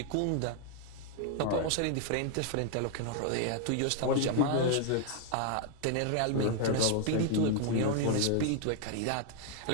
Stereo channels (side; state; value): both; different; correlation 0.00